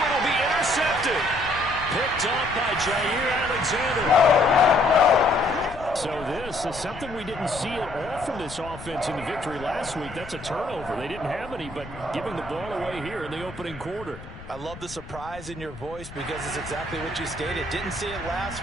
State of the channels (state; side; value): noise; left; rumble, 15 dB below the sound